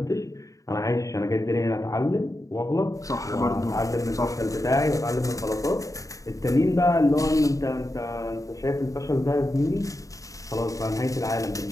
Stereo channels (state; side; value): late; right; 0.16 ms